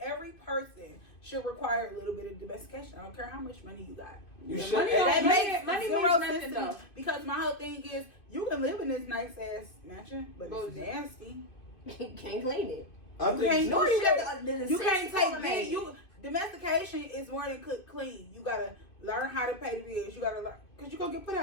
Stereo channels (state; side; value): late; right; 2.5 ms